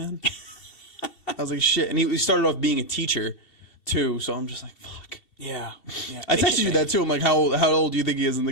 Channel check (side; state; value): right; late; 2.8 ms